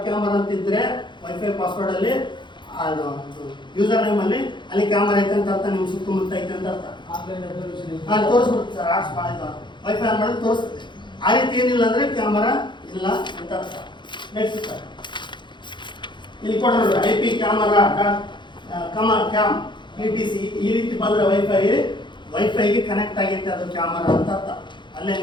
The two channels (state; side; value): late; right; 0.23 ms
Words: ಅಂತಿದ್ರೆ ವೈಫೈ ಪಾಸ್ವರ್ಡ್ ಅಲ್ಲಿ ಯೂಸರ್ ನೇಮ್ ಅಲ್ಲಿ ಅಲ್ಲಿ ಕ್ಯಾಮರಾ ಐತೆ ಅಂತ ಅರ್ಥ, ನಿಮ್ಗೆ ಸುತ್ತಮುತ್ತ ಐತೆ ಅಂತ ಅರ್ಥ. ತೋರಿಸ್ಬಿಡುತ್ತೆ ಸರ್, ಆರ್ಟ್ಸ್ ಮಾಡಿದ ವೈಫೈ ಆನ್ ಮಾಡಿದ್ರೆ ತೋರಿಸುತ್ತೆ. ಆ ರೀತಿ ಏನಿಲ್ಲ ಅಂದ್ರೆ ಕ್ಯಾಮರಾ ಇಲ್ಲ ಅಂತ ಅರ್ಥ. ನೆಕ್ಸ್ಟ್ ಸರ್ ಇಲ್ಲಿ ಕೊಡೋದು IP ಕ್ಯಾಮರಾ ಕ್ಯಾಮ್ ETC ಈ ರೀತಿ ಬಂದ್ರೆ ವೈಫೈಗೆ ಕನೆಕ್ಟ್ ಆಗೈತೆ ಅದು ಕ್ಯಾಮರಾ ಅಂತ ಅರ್ಥ. ಅಲ್ಲೇ